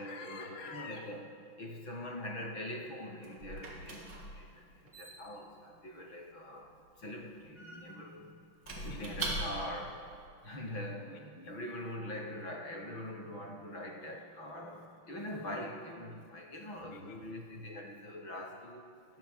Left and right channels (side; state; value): right; late; 6.0 ms